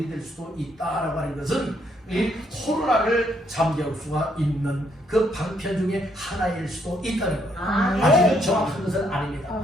될 수도 있다라고 하는 것은 이 코로나를 잠재울 수가 있는 그 방편 중에 하나일 수도 있다는 거예요. 아직은 정확한 것은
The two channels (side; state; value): both; normal; correlation 0.72